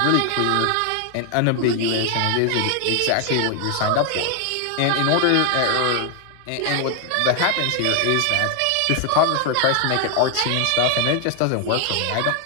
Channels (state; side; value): different; both; correlation 0.00